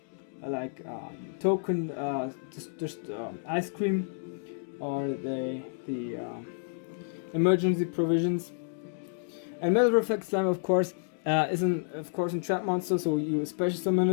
like token, just ice cream, or the emergency provisions. And Metal Reflect Slime, of course, is a trap monster, so you special summon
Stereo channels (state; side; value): silent; right; digital silence